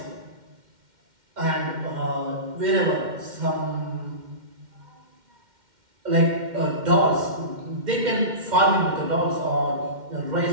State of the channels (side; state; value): left; late; 2.1 ms